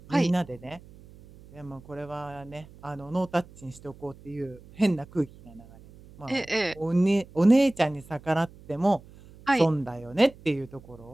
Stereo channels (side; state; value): right; noise; hum, 22 dB below the sound